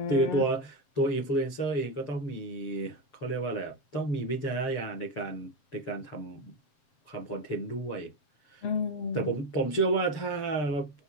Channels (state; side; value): late; right; 7.4 ms